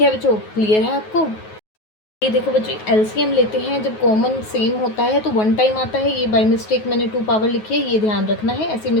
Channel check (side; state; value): right; late; 9.4 ms